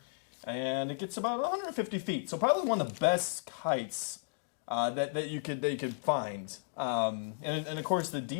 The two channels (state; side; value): silent; right; digital silence